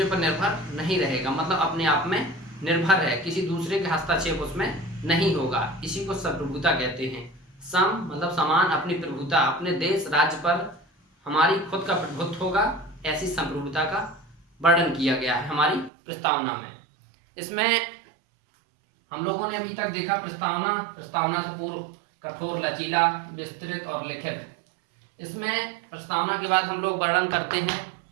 पर निर्भर नहीं रहेगा, मतलब अपने आप में निर्भर है, किसी दूसरे के हस्तक्षेप उसमें नहीं होगा। इसी को संप्रभुता कहते हैं। सम मतलब समान, अपनी प्रभुता, अपने देश राज्य पर हमारी खुद का प्रभुत्व होगा, ऐसी संप्रभुता का वर्णन किया गया है हमारी प्रस्तावना में। इसमें हम लोगों ने अभी तक देखा प्रस्तावना से पूर्व कठोर, लचीला, विस्तृत और लिखित। इसमें प्रस्तावना के बाद हम लोग वर्णन करते हैं,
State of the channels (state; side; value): drops out; left; at 15.9 s